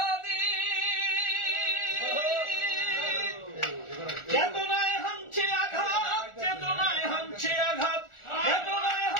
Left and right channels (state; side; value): late; right; 1.4 ms